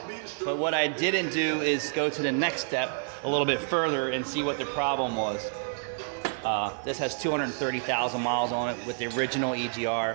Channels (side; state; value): left; silent; digital silence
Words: But what I didn't do is go to the next step a little bit further and see what the problem was. This has 230,000 miles on it with the original